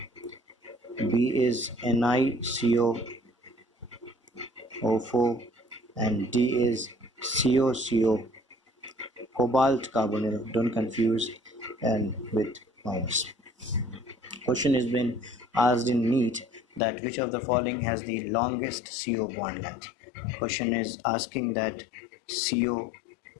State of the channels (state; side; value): drops out; right; at 16.8 s